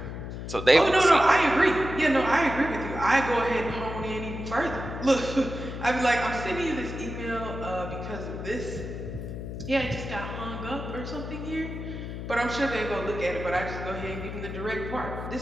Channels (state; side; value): noise; left; hum, 7 dB below the sound